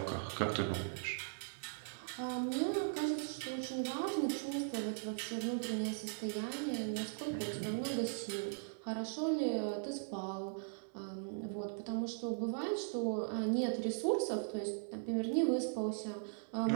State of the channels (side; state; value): left; silent; digital silence